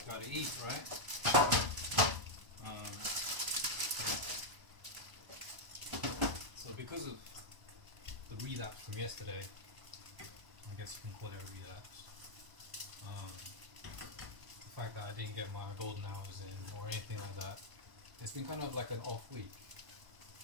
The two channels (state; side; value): late; left; 1.0 ms